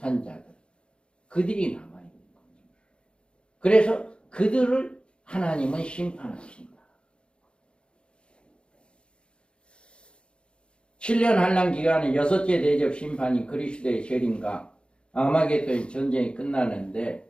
자들, 그들이 남아있는 거죠. 그래서 그들을 하나님은 심판하신다. 7년 한란 기간에 여섯째 대접 심판이 그리스도의 재림과 아마겟돈 전쟁이 끝나는데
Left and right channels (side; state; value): right; late; 0.055 ms